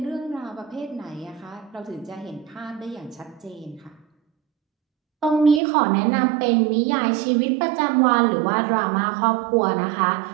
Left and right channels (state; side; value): drops out; left; at 5.6 s